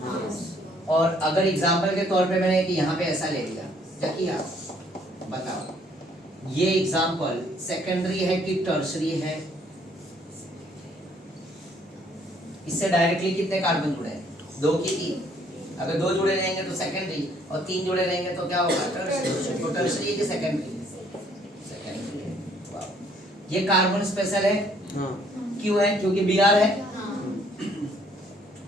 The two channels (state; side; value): normal; both; correlation 0.64